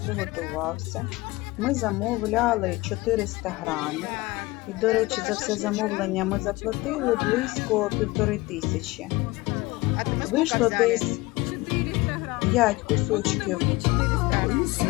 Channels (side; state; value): right; quieter; 21.3 dB